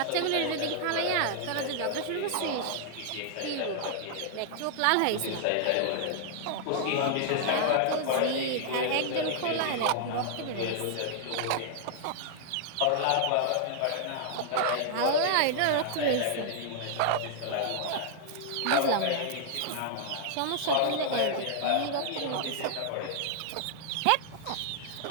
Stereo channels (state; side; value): different; both; correlation -0.01